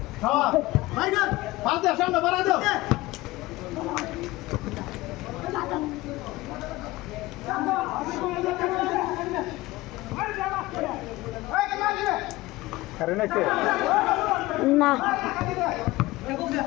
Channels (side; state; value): right; quieter; 19.2 dB